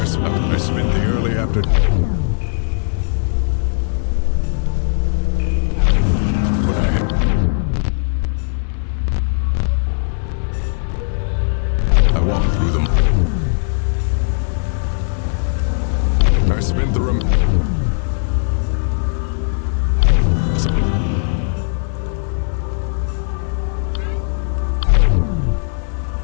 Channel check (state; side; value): silent; right; digital silence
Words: spent the early afternoon. I walked through them.